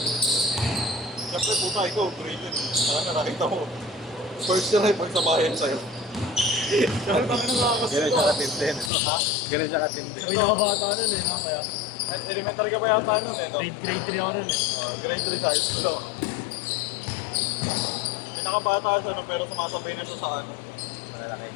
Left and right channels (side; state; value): right; drops out; at 8.9 s